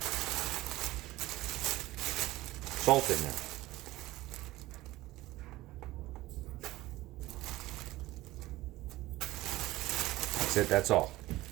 salt in there. That's it, that's all.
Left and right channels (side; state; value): left; quieter; 17.9 dB